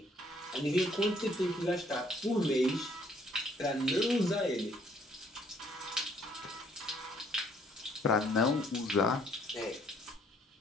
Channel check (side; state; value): both; normal; correlation 0.64